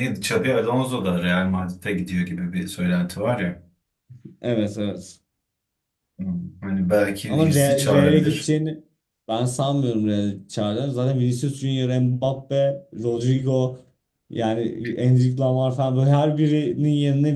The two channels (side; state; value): both; identical; correlation 1.00